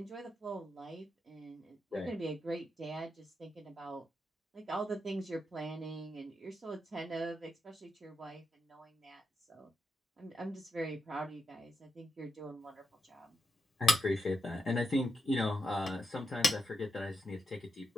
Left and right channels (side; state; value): both; normal; correlation 0.86